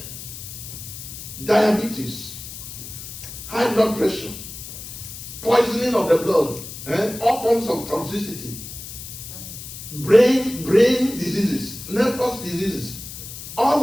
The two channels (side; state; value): left; noise; hiss, 11 dB below the sound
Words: diabetes, high blood pressure, poisoning of the blood, all forms of toxicity, brain diseases, nervous diseases.